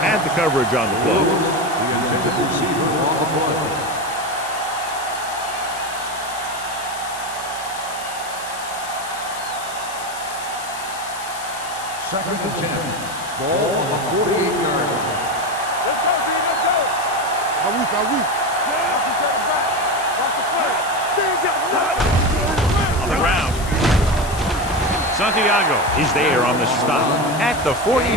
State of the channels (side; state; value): left; noise; hiss, 13 dB below the sound